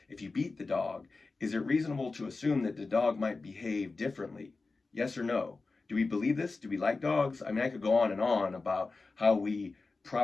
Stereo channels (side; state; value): right; quieter; 3.8 dB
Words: if you beat the dog, is it reasonable to assume that the dog might behave differently? Yes or no? Do we believe this? Do we like dogs? I mean, I could go on and on about how we